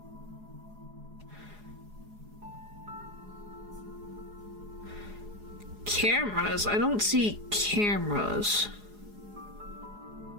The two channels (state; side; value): late; left; 4.8 ms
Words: Cameras? I don't see cameras.